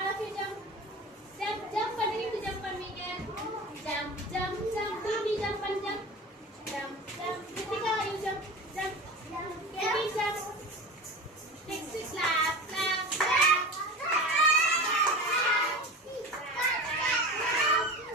of you jump. Jump, jump பண்ணுவீங்க jump பண்ணுவீங்க. Jump, jump, jump. Baby jump பண்ணு jump. Jump, jump. Ritika you jump, jump. Baby jump. Next is clap, clap, clap.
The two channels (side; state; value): both; normal; correlation 0.32